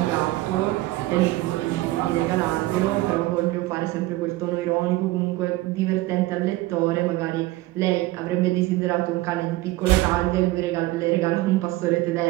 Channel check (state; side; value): quieter; left; 18.4 dB